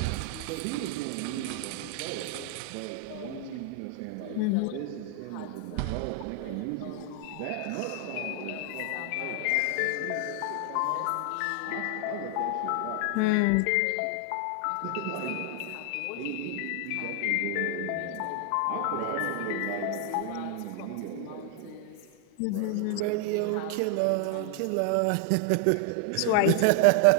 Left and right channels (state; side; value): different; both; correlation 0.00